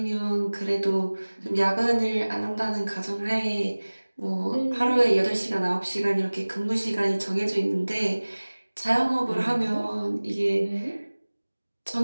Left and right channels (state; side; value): inverted; both; correlation -1.00